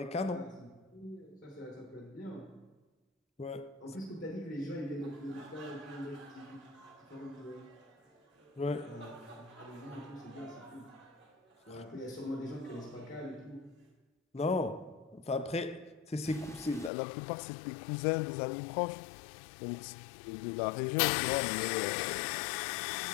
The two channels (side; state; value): right; drops out; at 16.9 s